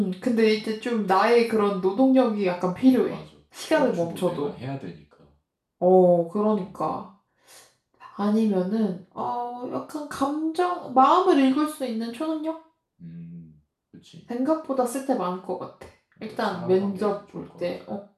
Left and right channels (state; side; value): identical; both; correlation 1.00